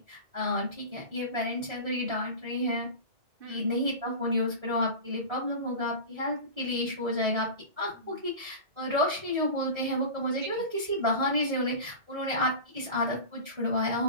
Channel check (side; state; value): left; late; 1.7 ms